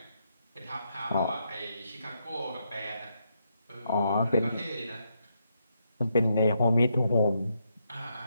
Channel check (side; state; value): both; inverted; correlation -0.80